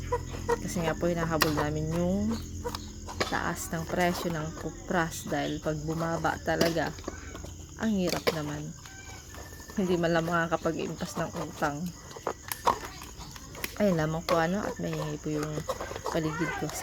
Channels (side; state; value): both; identical; correlation 1.00